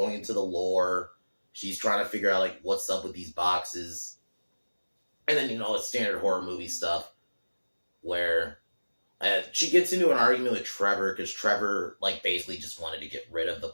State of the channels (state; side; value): inverted; both; correlation -1.00